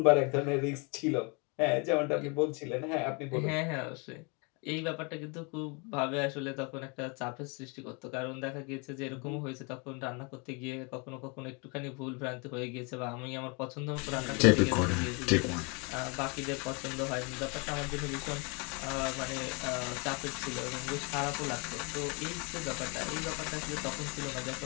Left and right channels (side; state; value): right; quieter; 31.7 dB